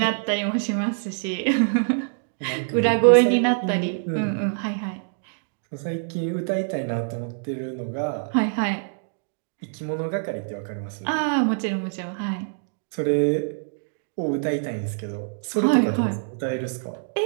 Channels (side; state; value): left; silent; digital silence